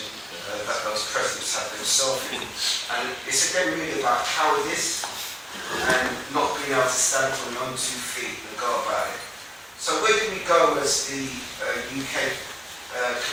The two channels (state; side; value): identical; both; correlation 1.00